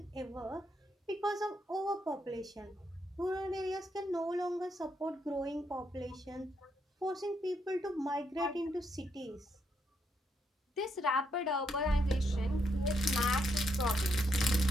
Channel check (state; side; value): normal; both; correlation 0.78